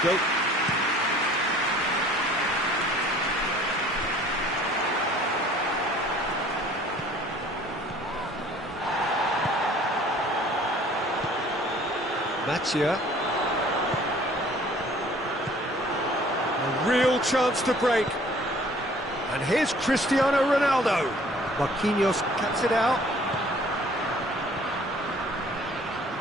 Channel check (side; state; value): both; normal; correlation 0.53